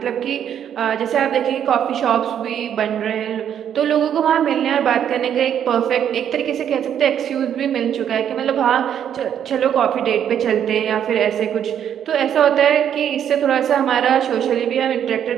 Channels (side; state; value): left; quieter; 9.3 dB